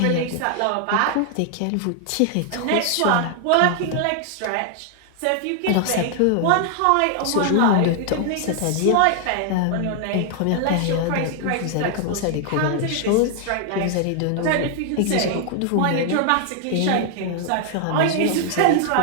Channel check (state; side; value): different; both; correlation 0.00